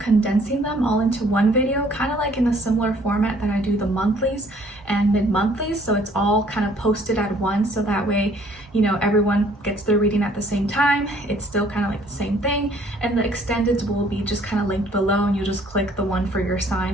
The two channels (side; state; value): both; normal; correlation 0.59